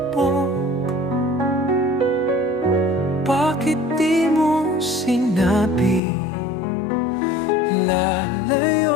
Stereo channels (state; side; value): drops out; right; at 6.0 s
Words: Bakit di mo sinabi